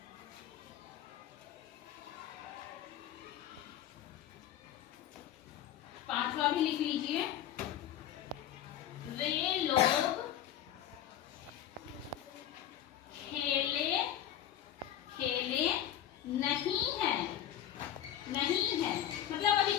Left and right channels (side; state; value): right; quieter; 11.3 dB